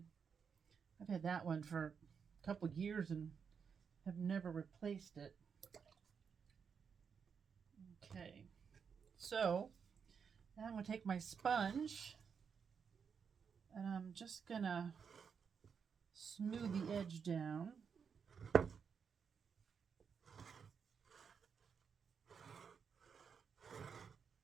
that one for a couple years and have never replaced it. Okay, so now I'm going to take my sponge and I'm just going to smooth the edge down.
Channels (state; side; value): quieter; left; 6.5 dB